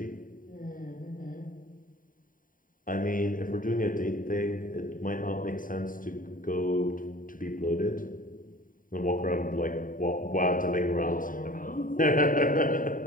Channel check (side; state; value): right; late; 0.40 ms